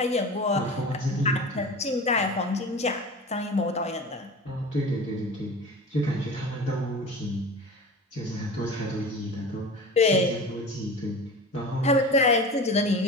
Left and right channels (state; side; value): normal; both; correlation 0.34